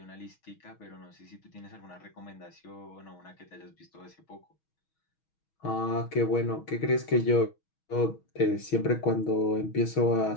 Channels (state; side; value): late; right; 6.3 ms